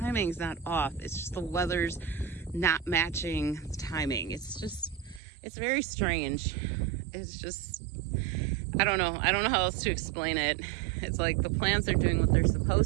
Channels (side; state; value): left; drops out; at 5.2 s